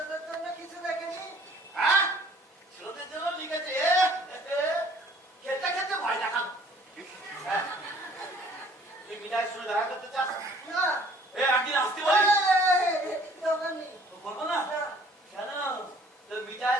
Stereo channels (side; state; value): both; normal; correlation 0.55